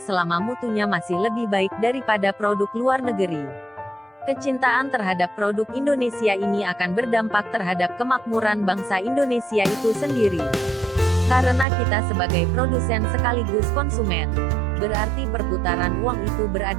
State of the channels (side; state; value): left; drops out; at 11.7 s